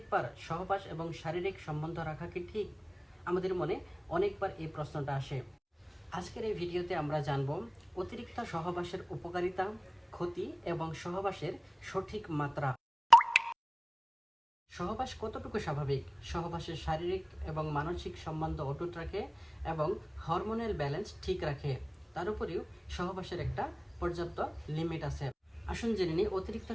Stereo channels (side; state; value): both; identical; correlation 1.00